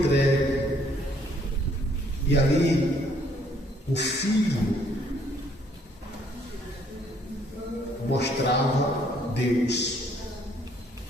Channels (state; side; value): normal; both; correlation 0.64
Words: E ali, o Filho mostrava Deus.